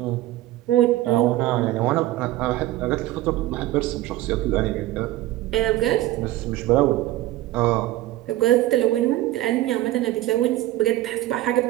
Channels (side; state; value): left; quieter; 15.7 dB